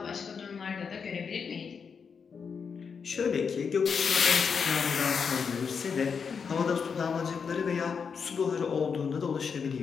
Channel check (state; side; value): quieter; right; 6.1 dB